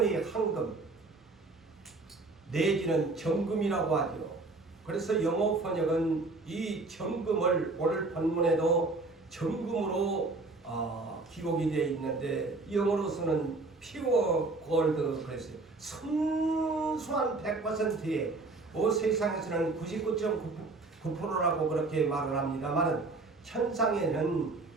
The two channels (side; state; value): left; quieter; 3.5 dB